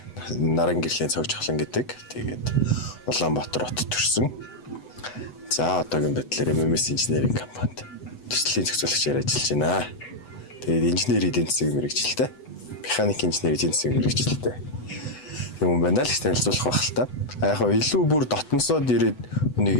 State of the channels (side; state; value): right; late; 8.0 ms